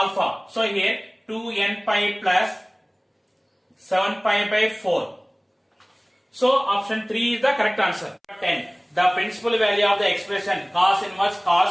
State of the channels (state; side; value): identical; both; correlation 1.00